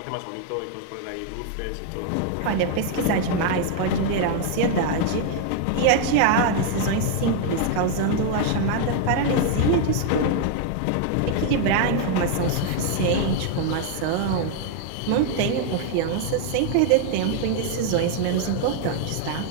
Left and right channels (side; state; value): both; different; correlation 0.00